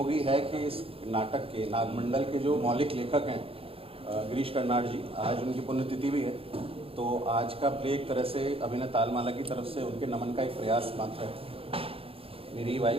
है कि इस नाटक के नागमंडल के जो मौलिक लेखक हैं गिरीश कर्नाड जी, आज उनकी पुण्यतिथि भी है। तो आज का प्ले एक तरह से अभिनय तालमाला की तरफ से उनके नमन का एक प्रयास मात्र है। मेरी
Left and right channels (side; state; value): left; late; 0.27 ms